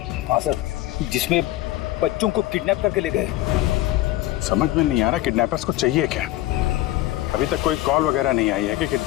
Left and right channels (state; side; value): quieter; right; 16.1 dB